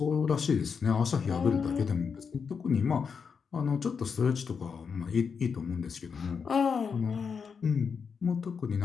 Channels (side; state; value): right; quieter; 6.0 dB